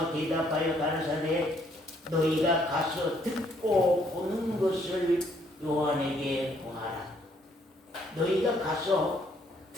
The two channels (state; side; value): normal; both; correlation 0.67